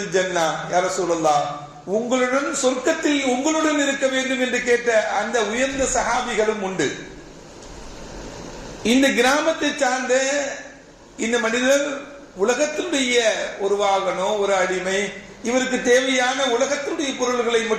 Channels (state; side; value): identical; both; correlation 1.00